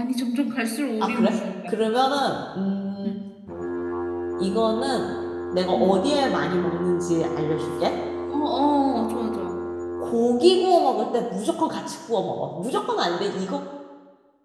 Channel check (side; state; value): both; identical; correlation 1.00